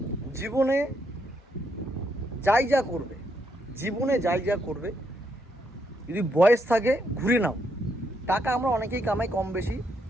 জীবনে যাই যা করবে, যদি বয়স থাকে ঘুরে নাও। টাকা আমরা অনেকেই কামাই কম বেশি,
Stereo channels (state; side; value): normal; both; correlation 0.77